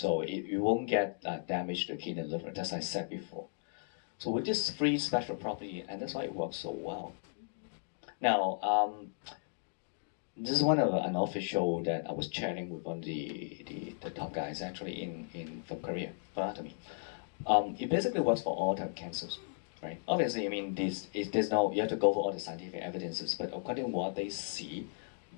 you won't get damage to the kidney and liver, as I said before. So with this free special property, and that's why it works so well. Now, this is one of an official that I was chatting with one of the top guys actually in from Korea for anatomy. It basically works for all type of cancers, right? Obviously, I mean, there's no, you have to go for all the scientific evidences, but according to what they see,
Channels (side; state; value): right; silent; digital silence